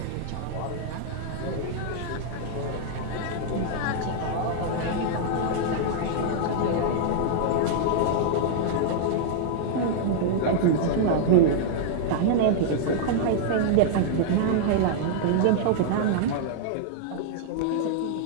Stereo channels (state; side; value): different; both; correlation -0.01